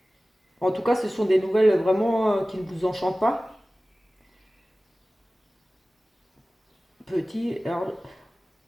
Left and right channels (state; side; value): normal; both; correlation 0.97